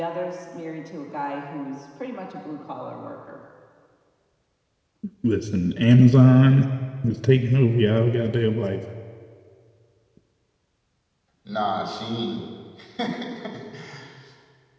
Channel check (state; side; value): identical; both; correlation 1.00